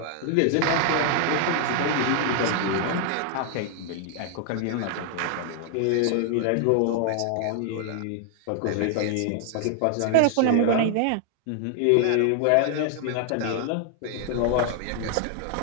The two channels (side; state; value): both; different; correlation 0.00